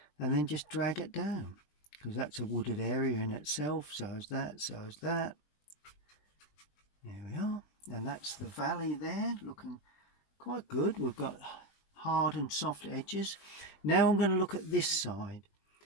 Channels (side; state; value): right; late; 20 ms